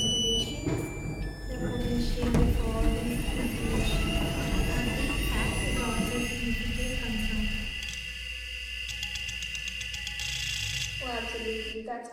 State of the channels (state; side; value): identical; both; correlation 1.00